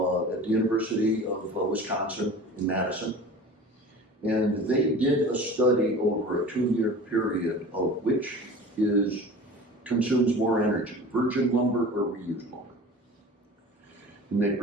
the University of Wisconsin in Madison. And they did a study over a 2-year period of which consumes more energy, virgin lumber or reused lumber. And they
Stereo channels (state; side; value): normal; both; correlation 0.38